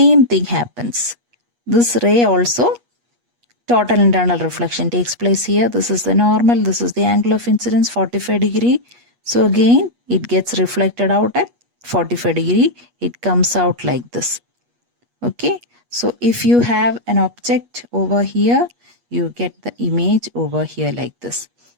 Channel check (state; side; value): late; left; 8.3 ms